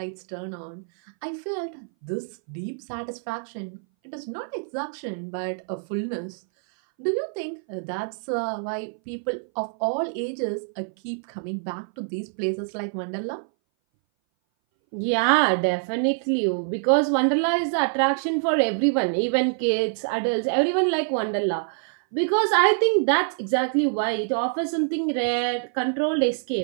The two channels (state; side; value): silent; left; 59 dB below the other